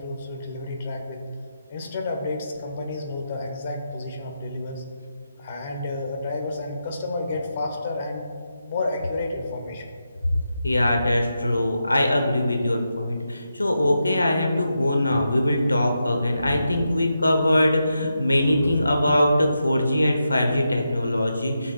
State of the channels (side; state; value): both; inverted; correlation -0.86